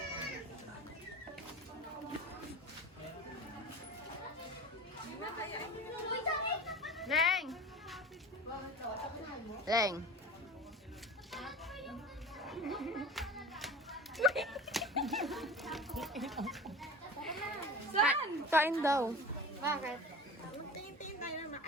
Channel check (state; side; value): normal; both; correlation 0.36